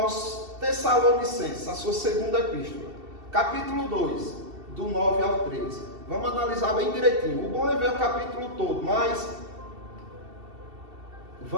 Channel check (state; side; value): late; left; 2.7 ms